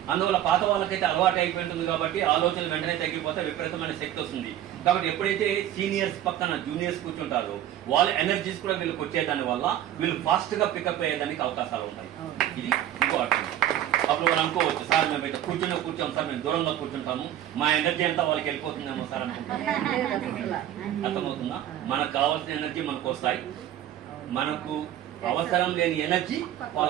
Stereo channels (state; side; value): quieter; left; 11.7 dB